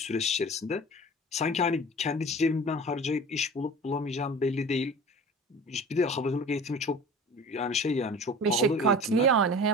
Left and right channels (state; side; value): normal; both; correlation 0.39